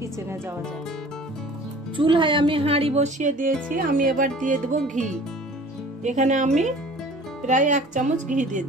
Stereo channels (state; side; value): normal; both; correlation 0.46